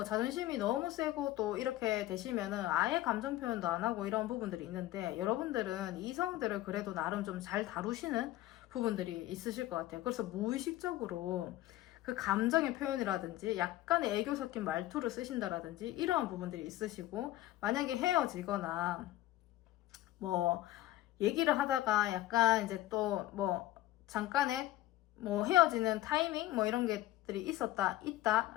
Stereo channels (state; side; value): quieter; right; 15.7 dB